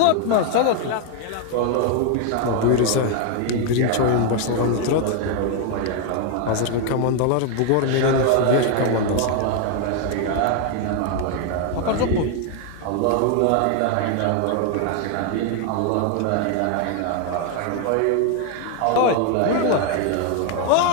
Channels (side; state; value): both; different; correlation 0.00